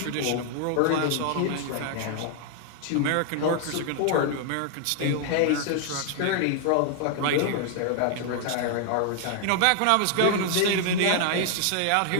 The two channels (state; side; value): different; both; correlation 0.00